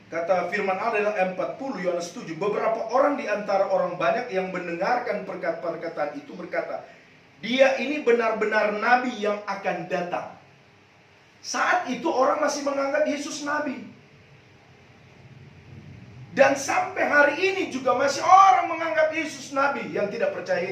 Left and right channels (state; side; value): identical; both; correlation 1.00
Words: kata firman Allah dalam 40 Yohanes 7, beberapa orang di antara orang banyak yang mendengarkan perkataan itu berkata, dia ini benar-benar nabi yang akan datang. Saat itu orang masih menganggap Yesus nabi. Dan sampai hari ini juga masih orang menganggap Yesus nabi yang tidak percaya